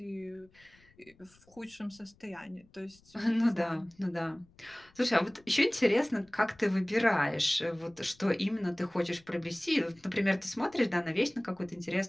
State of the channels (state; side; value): noise; left; rumble, 29 dB below the sound